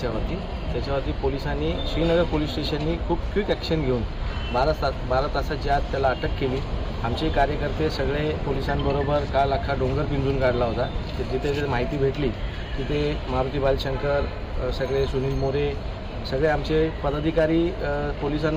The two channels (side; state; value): both; identical; correlation 1.00